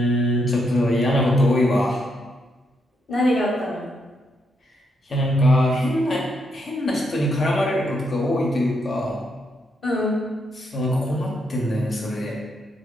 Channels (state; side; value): normal; both; correlation 0.79